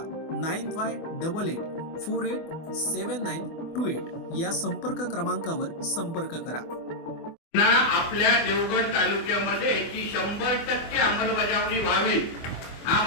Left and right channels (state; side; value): late; right; 24 ms